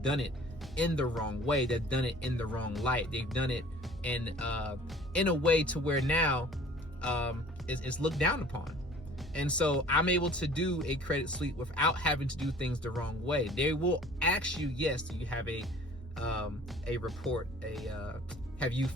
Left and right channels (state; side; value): normal; both; correlation 0.49